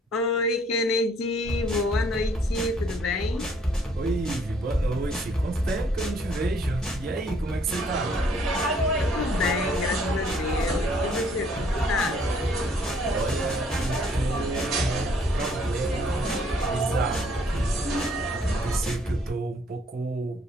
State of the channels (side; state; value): both; normal; correlation 0.63